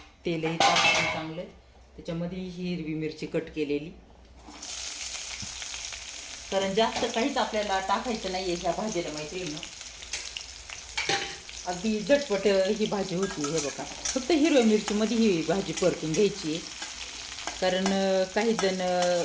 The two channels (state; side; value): identical; both; correlation 1.00